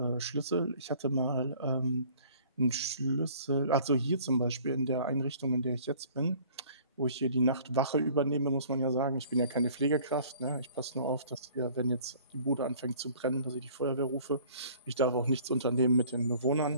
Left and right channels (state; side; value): inverted; both; correlation -0.53